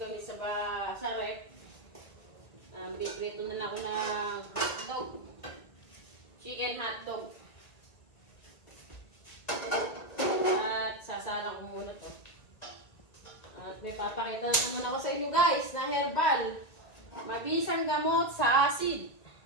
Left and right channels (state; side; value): late; right; 2.0 ms